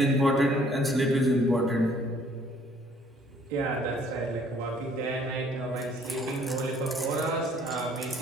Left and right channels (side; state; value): both; normal; correlation 0.60